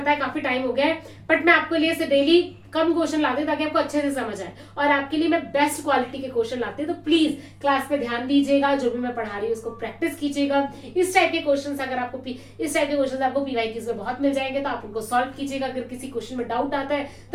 है काफी टाइम हो गया है, बट मैं आपके लिए डेली कम क्वेश्चन लाती हूँ ताकि आपको अच्छे से समझ आए, और आपके लिए मैं बेस्ट क्वालिटी के क्वेश्चन लाती हूँ। तो प्लीज क्लास पे ध्यान दीजिएगा, जो भी मैं पढ़ा रही हूँ उसको प्रैक्टिस कीजिएगा। इस टाइप के क्वेश्चन अगर आपको पीवाईक्यूज में बहुत मिल जाएंगे, तो आप उनको सॉल्व कीजिएगा। अगर किसी क्वेश्चन में डाउट आता है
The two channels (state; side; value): identical; both; correlation 1.00